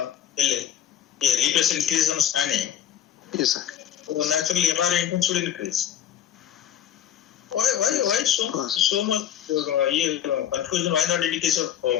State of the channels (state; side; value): quieter; right; 10.4 dB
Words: The repressure increase on standing. Yes, sir. So naturally MR intensity should increase. Why so much confusion? Why not in the case of